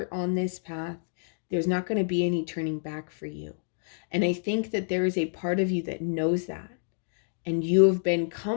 on this path, there's not going to be any turning back for you. And I think that there is a part of you that knows that, and you have been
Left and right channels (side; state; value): right; silent; digital silence